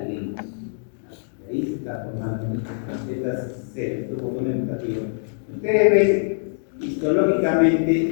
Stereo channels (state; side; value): silent; right; 63 dB below the other